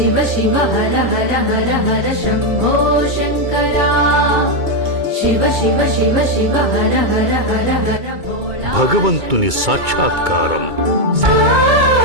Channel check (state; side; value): late; left; 2.2 ms